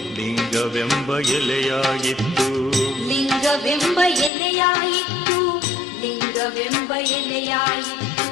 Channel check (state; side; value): drops out; right; at 4.3 s